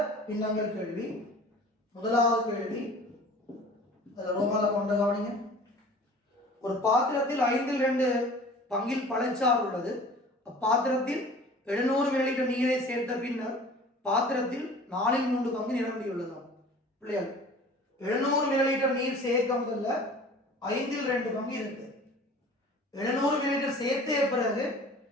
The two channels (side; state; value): both; normal; correlation 0.45